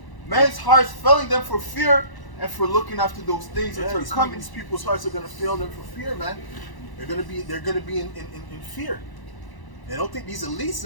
Men's hearts failing them for fear, and for looking after those things that are coming. These people's hearts are gonna fail them for fear, man. They're gonna be in fear. And I don't think these elites,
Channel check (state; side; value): late; right; 1.0 ms